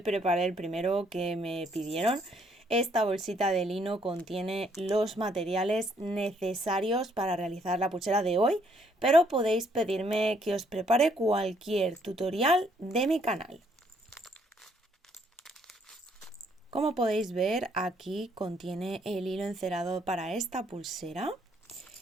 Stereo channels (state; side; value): normal; both; correlation 0.68